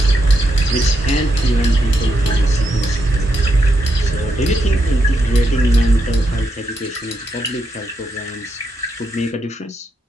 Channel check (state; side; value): normal; both; correlation 0.82